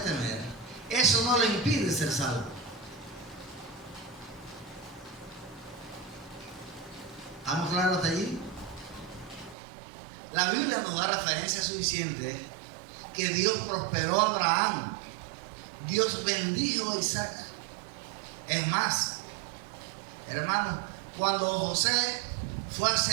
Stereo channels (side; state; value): left; drops out; at 9.6 s